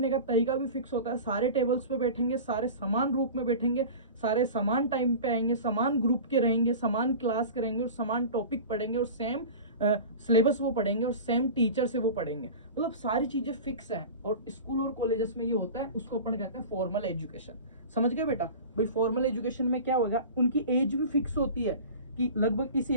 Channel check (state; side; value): inverted; both; correlation -0.35